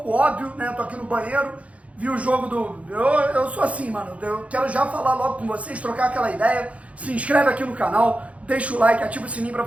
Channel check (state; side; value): late; left; 0.065 ms